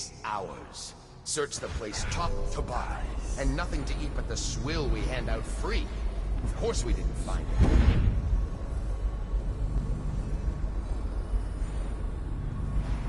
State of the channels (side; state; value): both; identical; correlation 1.00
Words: hours. Search the place top to bottom. And nothing to eat but the swill we hand out free. Of course we didn't find it.